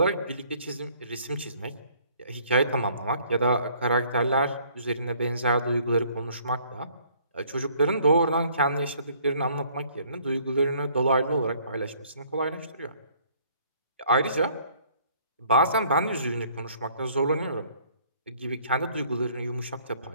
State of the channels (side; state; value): both; inverted; correlation -0.60